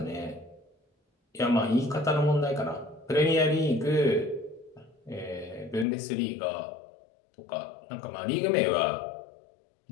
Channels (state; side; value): drops out; right; at 5.9 s